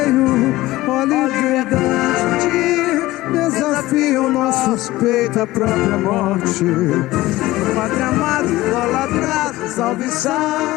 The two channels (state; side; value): quieter; right; 17.6 dB